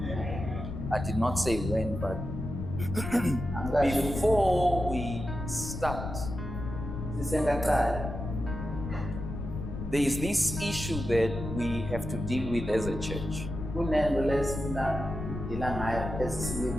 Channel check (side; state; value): left; noise; rumble, 6 dB below the sound